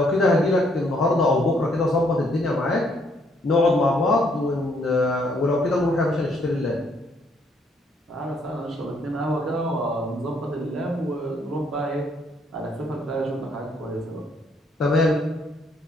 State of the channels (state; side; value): normal; both; correlation 0.69